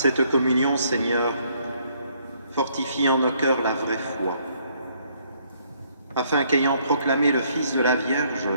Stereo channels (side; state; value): both; inverted; correlation -0.67